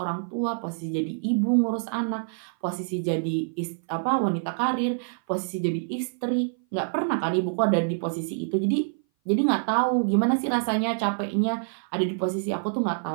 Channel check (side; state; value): left; silent; 58 dB below the other